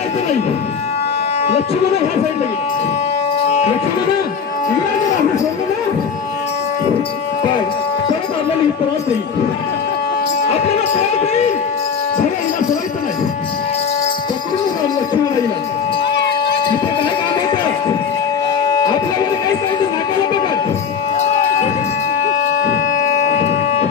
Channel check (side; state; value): right; quieter; 6.4 dB